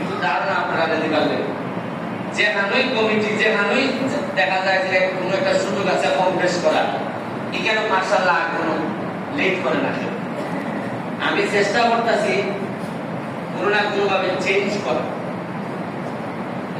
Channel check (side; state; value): both; identical; correlation 1.00